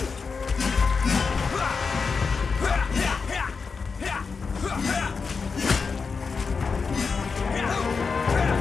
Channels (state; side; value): quieter; right; 5.0 dB